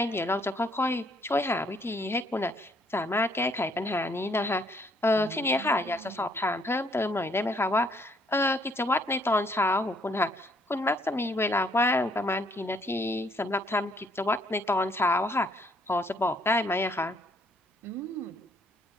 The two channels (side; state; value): both; normal; correlation 0.66